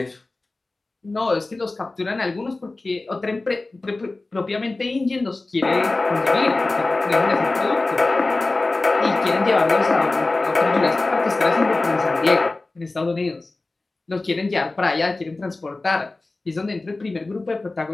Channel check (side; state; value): right; quieter; 3.2 dB